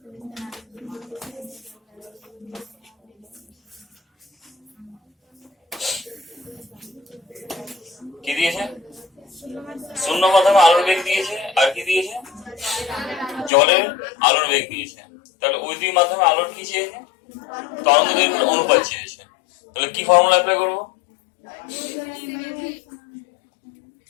কি দিয়েছে? শূন্য মাধ্যমে আলোর বেগ দিয়েছে, আর কি দিয়েছে? জলের আলোর বেগ দিয়েছে। তাহলে ওই দুই মাধ্যমে আলোর কি চেয়েছে? তরঙ্গ দৈর্ঘ্যের অনুপাত চেয়েছে। তাহলে কি ফর্মুলা অ্যাপ্লাই করবো?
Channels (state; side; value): drops out; right; at 13.5 s